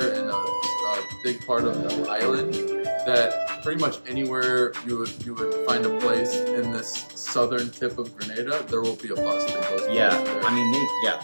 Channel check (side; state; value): both; inverted; correlation -1.00